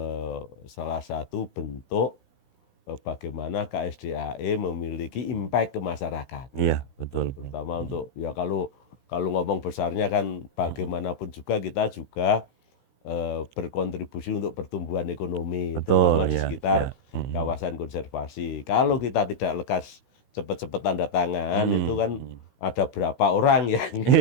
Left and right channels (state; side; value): late; right; 16 ms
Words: salah satu bentuk bagaimana KSDAE memiliki impact ke masyarakat. Iya betul. Terutama untuk ya kalau ngomong besarnya kan bagaimanapun juga kita juga berkontribusi untuk pertumbuhan ekonomi, terutama di sekitar kawasan konservasi. Kalau kita tidak lekas cepat-cepat tanda tangan, itu kan ada berapa orang yang